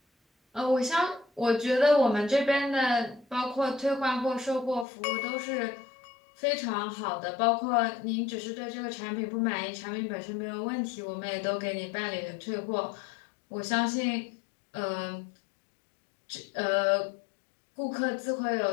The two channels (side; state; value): right; drops out; at 4.9 s